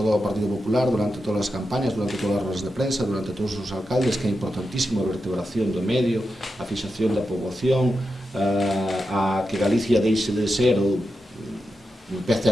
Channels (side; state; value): both; normal; correlation 0.88